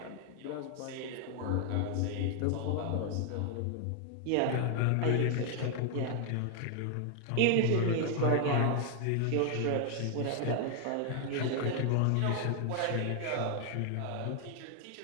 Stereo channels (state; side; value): different; both; correlation 0.00